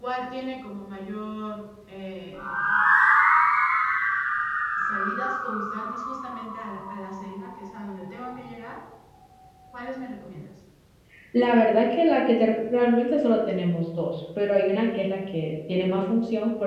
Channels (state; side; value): identical; both; correlation 1.00